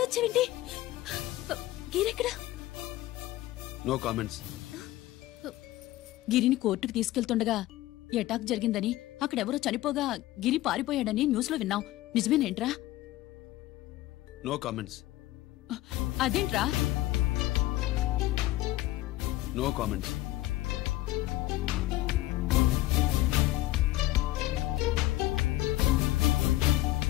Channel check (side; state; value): right; quieter; 16.4 dB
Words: వచ్చావేంటి గిరెక్కడా నో కామెంట్స్. గిరిని కోర్టుకు తీసుకెళ్తుండగా ఎటాక్ జరిగిందని అక్కడెవరో చనిపోగా గిరి పారిపోయాడని న్యూస్ లో విన్నాం నిజమేనేంట్రా? No comments. అదేంట్రా? No comments.